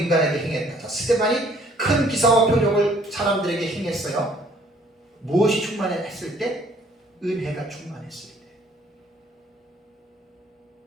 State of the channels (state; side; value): normal; both; correlation 0.60